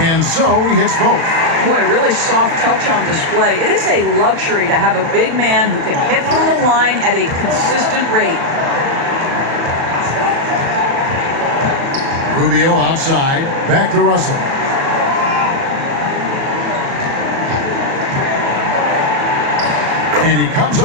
so he hits both. Boy, really soft touch on display. It is a luxury to have a big man who can hit from the line at a consistent rate. Rubio outside. Back to Russell. And he comes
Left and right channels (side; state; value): left; late; 36 ms